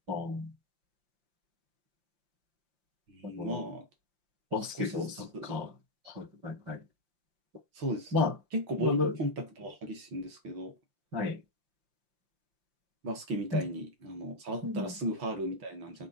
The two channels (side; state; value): left; late; 5.8 ms